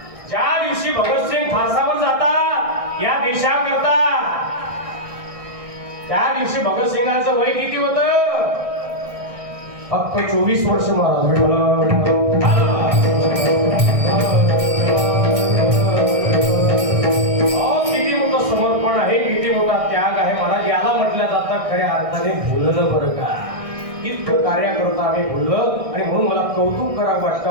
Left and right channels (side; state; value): left; late; 1.6 ms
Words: ज्या दिवशी भगतसिंग फासावर जातात या देशाकरता, त्या दिवशी भगतसिंगांचं वय किती होतं? फक्त 24 वर्ष महाराज. किती मोठं समर्पण आहे, किती मोठा त्याग आहे महाराज. याला म्हटलं जातं खऱ्या अर्थाने भुललं बरं का. इतकं कार्याकरता आम्ही भुललं आणि म्हणून मला कौतुक करावं वाटतं